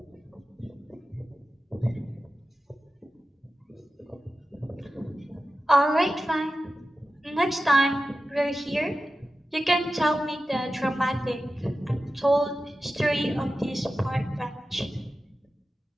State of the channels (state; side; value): normal; both; correlation 0.93